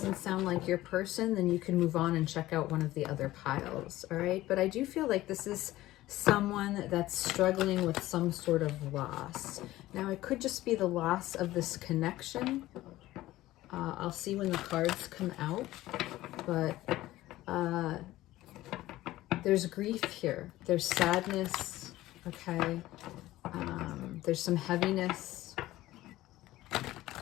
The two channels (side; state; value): right; quieter; 16.2 dB